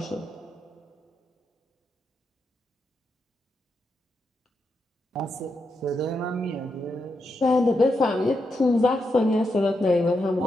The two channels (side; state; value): both; normal; correlation 0.84